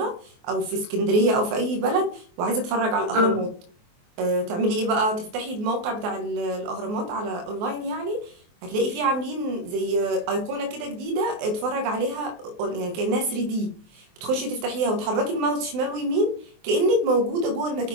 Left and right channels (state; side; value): late; left; 23 ms